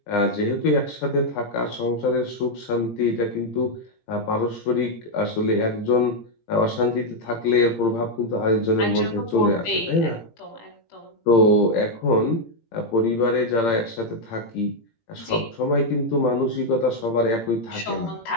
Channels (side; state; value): right; late; 17 ms